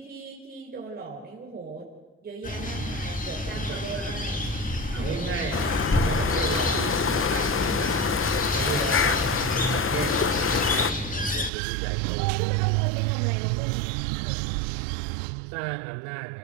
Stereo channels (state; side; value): drops out; left; at 11.5 s